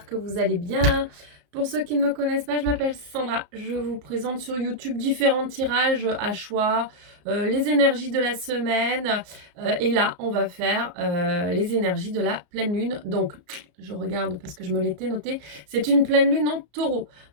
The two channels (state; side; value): late; left; 34 ms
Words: que vous allez bien. Pour ceux qui ne me connaissent pas, je m'appelle Sandra, je vous présente sur YouTube différents tirages à choix, les énergies de la semaine, et là on va faire les énergies de la pleine lune. Donc je regarde parce que je me l'étais noté, c'est une pleine lune en taureau,